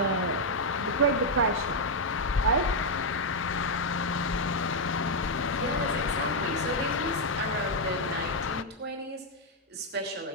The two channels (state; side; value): normal; both; correlation -0.01